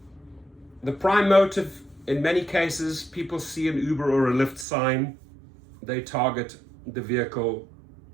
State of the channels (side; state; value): left; drops out; at 4.7 s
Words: the prime motive, in many cases, people see an Uber or a Lyft sign, they target the vehicle,